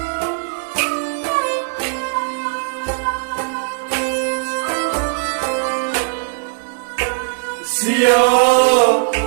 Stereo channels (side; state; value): left; silent; digital silence